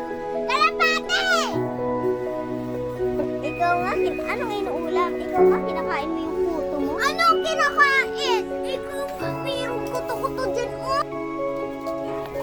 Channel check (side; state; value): both; identical; correlation 1.00